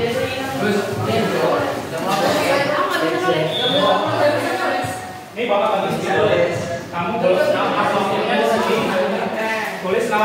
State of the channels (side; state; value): both; identical; correlation 1.00